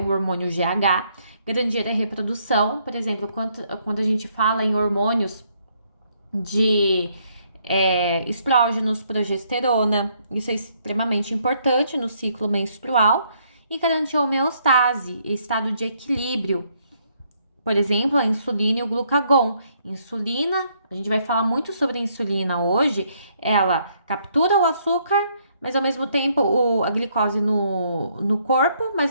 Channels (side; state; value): both; inverted; correlation -0.71